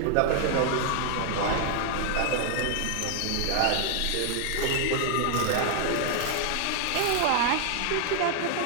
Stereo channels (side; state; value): both; different; correlation 0.00